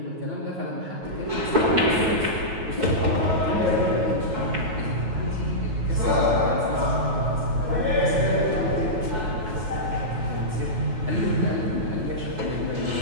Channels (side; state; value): left; late; 9.3 ms